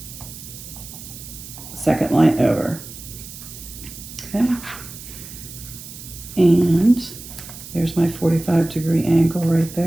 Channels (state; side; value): noise; right; hiss, 14 dB below the sound